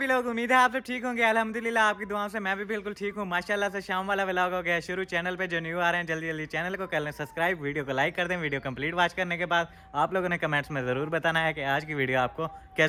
लोग उम्मीद है आप सब ठीक होंगे अल्हम्दुलिल्लाह आपकी दुआओं से मैं भी बिल्कुल ठीक हूँ माशाल्लाह से शाम वाला व्लॉग हो गया शुरू चैनल पे जो न्यू आ रहे हैं जल्दी जल्दी चैनल को कर लें सब्सक्राइब वीडियो को लाइक कर दें वीडियो कंप्लीट वॉच करने के बाद आप लोगों ने कमेंट्स में ज़रूर बताना है कि आज की वीडियो आपको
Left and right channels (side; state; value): both; identical; correlation 1.00